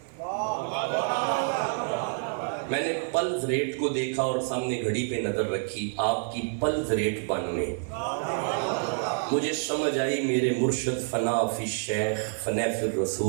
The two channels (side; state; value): left; silent; 59 dB below the other